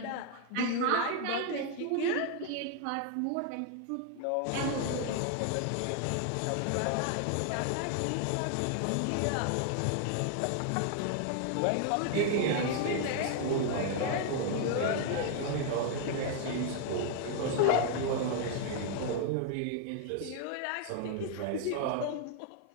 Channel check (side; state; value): both; different; correlation 0.00